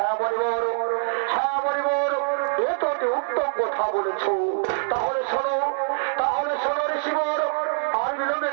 মরিবর, হ্যাঁ মরিবর, এ তো অতি উত্তম কথা বলেছ। তাহলে শোনো, তাহলে শোনো ঋষিবর, আর বিলম্বে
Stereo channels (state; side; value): silent; left; digital silence